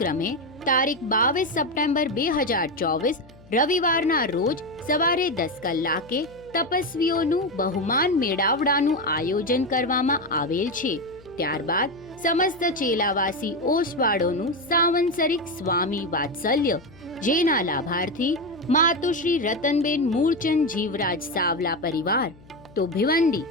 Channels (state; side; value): noise; left; hum, 24 dB below the sound